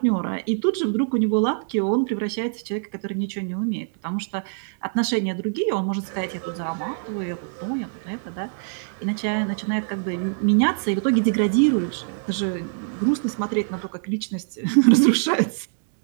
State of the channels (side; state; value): left; silent; digital silence